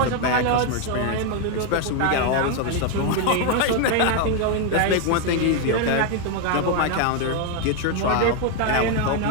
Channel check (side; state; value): both; different; correlation 0.01